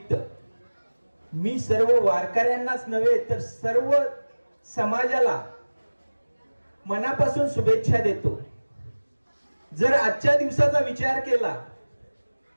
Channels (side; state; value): both; inverted; correlation -1.00